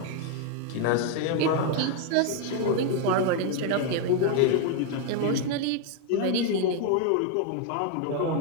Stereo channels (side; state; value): both; different; correlation 0.01